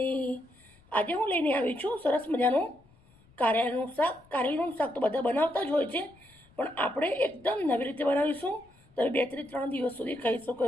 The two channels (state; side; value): noise; left; rumble, 29 dB below the sound